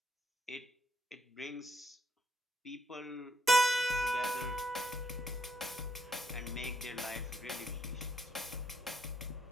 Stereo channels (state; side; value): normal; both; correlation 0.74